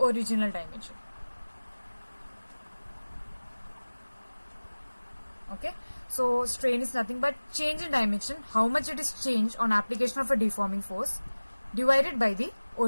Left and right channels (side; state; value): both; inverted; correlation -1.00